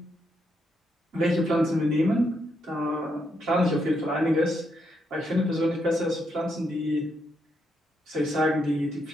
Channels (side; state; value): both; normal; correlation 0.79